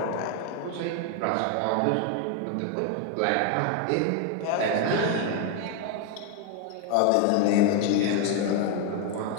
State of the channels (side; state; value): both; different; correlation 0.01